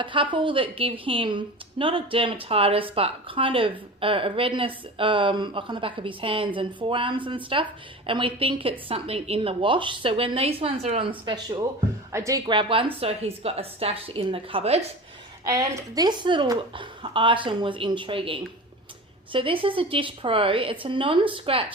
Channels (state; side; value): normal; both; correlation 0.33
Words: couple that give him not a dermatitis, but kind of a redness like on the back of his hands and forearms and stuff. And we think it's something in the wash. So when these ones are on special, I do grab one, so he's got a stash in the cupboard. And this little item was intriguing. So this is a Dish Pro. It's a